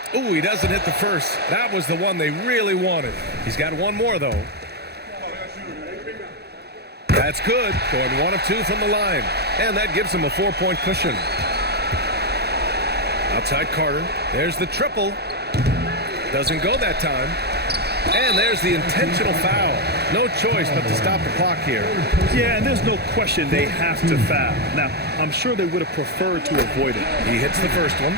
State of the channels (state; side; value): late; left; 0.48 ms